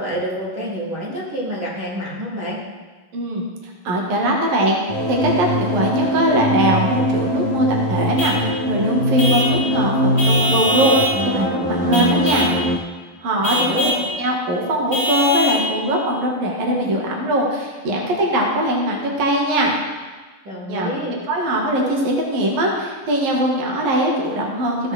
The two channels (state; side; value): late; left; 11 ms